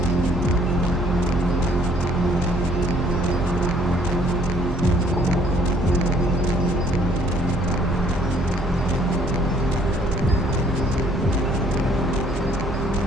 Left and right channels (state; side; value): normal; both; correlation 0.61